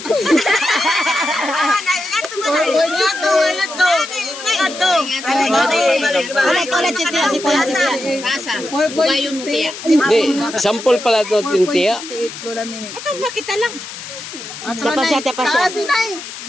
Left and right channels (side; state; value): left; noise; hiss, 11 dB below the sound